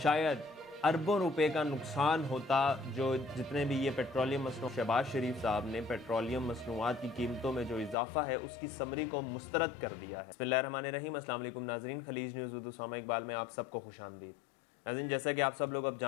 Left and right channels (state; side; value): drops out; right; at 8.0 s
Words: شاید اربوں روپے کا نقصان ہوتا، جو جتنے بھی یہ پیٹرولیم مصنوعات شہباز شریف صاحب نے پیٹرولیم مصنوعات کی قیمتوں میں جو اضافہ ہے اس کی سمری کو مسترد کر دیا ہے۔ بسم اللہ الرحمن الرحیم، السلام علیکم ناظرین، خلیج نیوز اردو سامع اقبال میں آپ سب کو خوش آمدید۔ ناظرین، جیسا کہ آپ سب لوگ اب